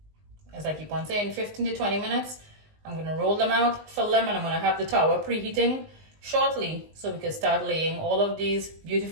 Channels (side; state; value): left; late; 19 ms